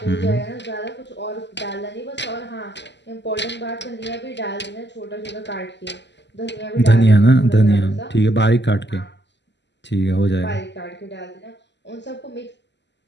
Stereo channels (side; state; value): right; late; 0.51 ms